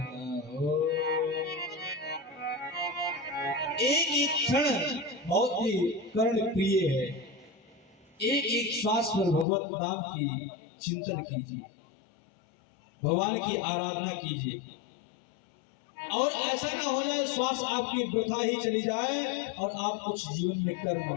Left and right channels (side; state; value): right; drops out; at 9.5 s